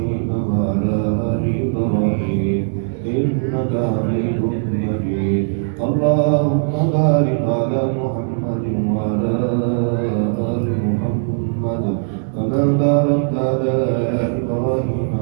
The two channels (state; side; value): silent; left; 67 dB below the other